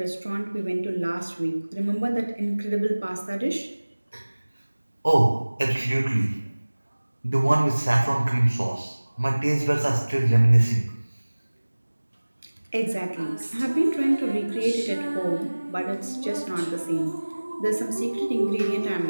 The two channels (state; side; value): inverted; both; correlation -1.00